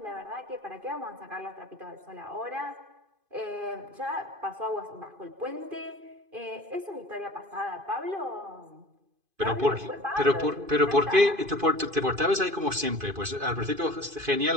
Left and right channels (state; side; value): late; left; 2.5 ms